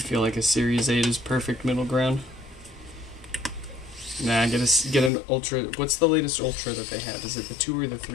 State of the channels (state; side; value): drops out; right; at 5.1 s